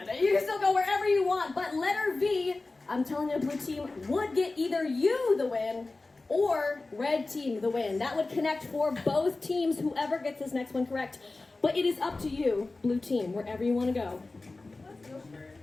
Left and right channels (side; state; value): right; quieter; 3.3 dB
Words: it. You can still go wherever you want. But letter V, I'm telling you, blue team would get either you the win or red team the win. That would connect for both teams, whoever gets this next one correct. But it is up to you, blue team, wherever you want to go.